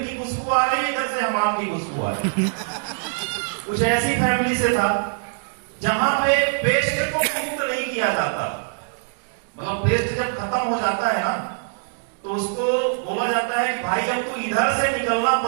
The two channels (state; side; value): silent; left; digital silence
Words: की खुशबू आ रही है, इधर से हमाम की खुशबू आ रही है। कुछ ऐसी फैमिली से था जहां पे पेस्ट को मुक्त नहीं किया जाता। मतलब पेस्ट जब खत्म हो जाता है ना तो उसको बोला जाता है कि भाई अब तू इधर से निकलना